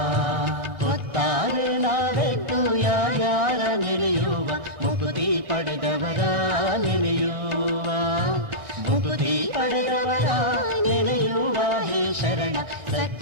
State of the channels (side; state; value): left; late; 1.3 ms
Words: ಹೊತ್ತಾರೆ ನಾವೆಟ್ಟು ಯಾರ್ಯಾರ ನೆನೆಯುವ ಮುಕುತಿ ಪಡೆದವರ ನೆನೆಯುವ ಮುಕುತಿ ಪಡೆದವರ ನೆನೆಯುವ ಹೇ ಶರಣ